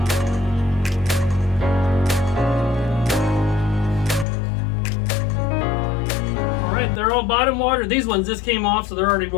They're all bottom watered. These ones just came off, so they're already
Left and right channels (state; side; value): drops out; right; at 4.2 s